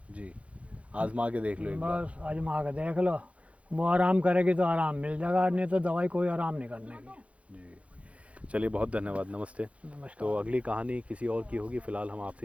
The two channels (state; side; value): late; left; 0.063 ms